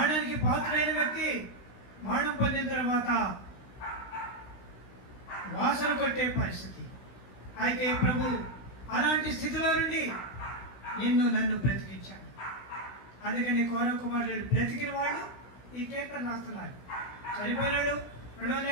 పాత్రైన వ్యక్తి మరణం పొందిన తర్వాత వాసన కొట్టే పరిస్థితి. అయితే ప్రభు అలాంటి స్థితిలో నుండి నన్ను బ్రతికించాడు. అందుకని కౌరవ కుమారుడు బ్రతికిన వాడు ఈ కీర్తన రాస్తున్నారు. చనిపోయినాడు,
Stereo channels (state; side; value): late; right; 16 ms